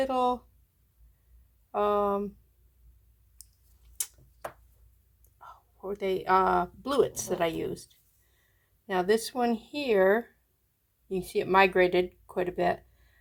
bluets that I used. Now this one here, you can see it migrated quite a bit.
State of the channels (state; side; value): identical; both; correlation 1.00